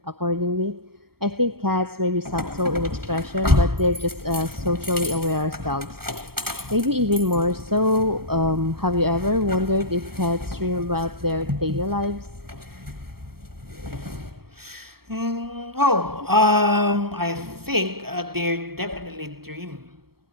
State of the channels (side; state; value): left; late; 0.95 ms